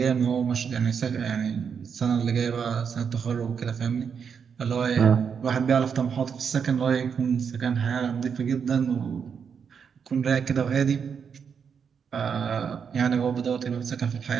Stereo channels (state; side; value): quieter; left; 6.7 dB